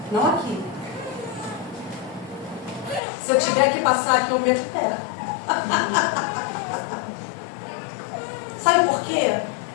Não aqui. Se eu tiver que passar aqui, eu meto o pé. Sabe por quê?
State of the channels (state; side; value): drops out; right; at 3.0 s